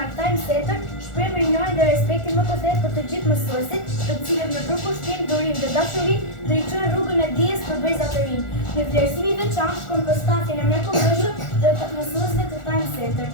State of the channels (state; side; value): late; right; 1.4 ms